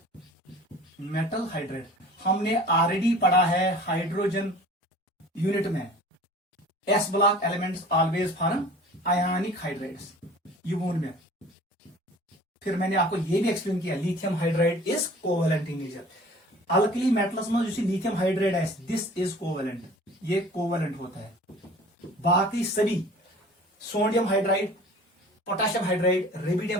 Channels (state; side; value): normal; both; correlation 0.45